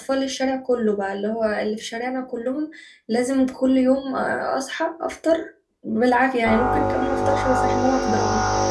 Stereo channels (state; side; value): identical; both; correlation 1.00